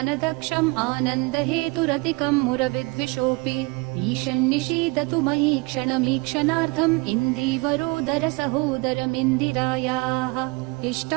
आनन्दहेतुरतिकं मुरविद्विषोऽपि ईशन्निषीदतु मयि क्षणमीक्षणार्थम् इन्दीवरोदर सहोदरमिन्दिरायाः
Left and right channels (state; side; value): quieter; left; 27.0 dB